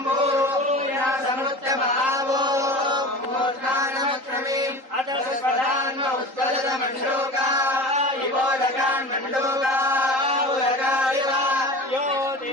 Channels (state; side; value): late; left; 3.8 ms